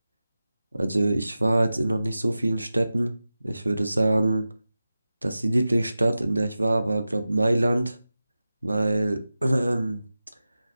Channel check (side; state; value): both; inverted; correlation -0.94